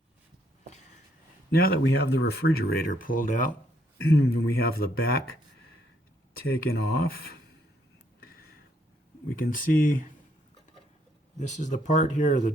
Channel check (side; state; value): both; normal; correlation 0.71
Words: Now that we have the refrigerator pulled out and we have the back taken off, we can see this is the part here, the